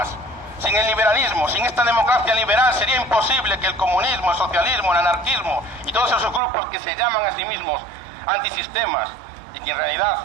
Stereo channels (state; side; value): drops out; left; at 6.4 s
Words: Sin el liberalismo, sin esta democracia liberal, sería imposible que el comunismo, el socialismo, el anarquismo y todos esos grupos que se llaman a sí mismos antisistemas y que en realidad